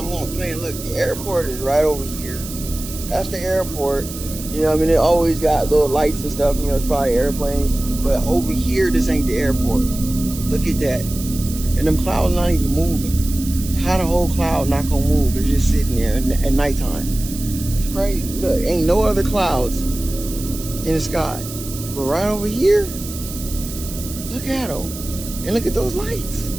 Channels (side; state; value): right; noise; hiss, 11 dB below the sound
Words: gonna play and look, the airport is right over here. That's the airport. You know what I mean? It always got little lights and stuff, you know, it's probably airplanes. But over here, this ain't the airport. Look at that. And them clouds not even moving. How the whole cloud not gonna move? It's just sitting there at nighttime. It's crazy. Look, ain't no other clouds in the sky. But right over here, look at them. And look at those lights.